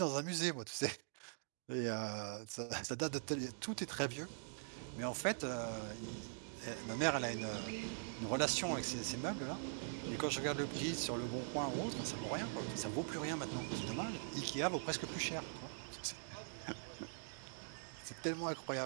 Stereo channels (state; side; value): silent; left; digital silence